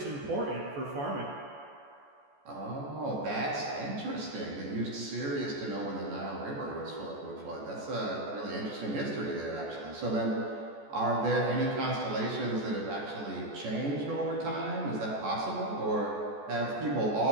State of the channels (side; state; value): left; late; 14 ms